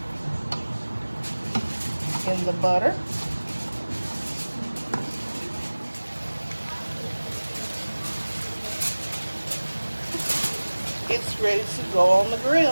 in the butter. It's ready to go on the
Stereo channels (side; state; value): both; inverted; correlation -1.00